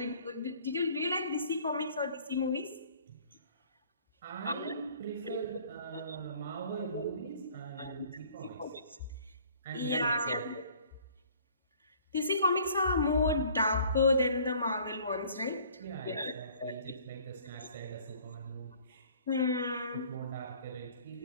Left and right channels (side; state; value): both; inverted; correlation -0.54